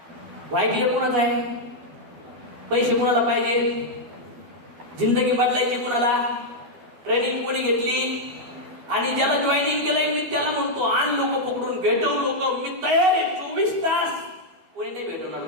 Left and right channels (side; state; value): left; late; 12 ms